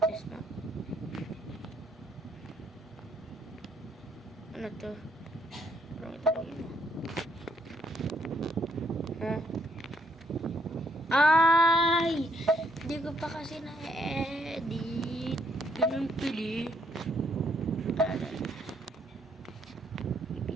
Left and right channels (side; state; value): both; normal; correlation 0.70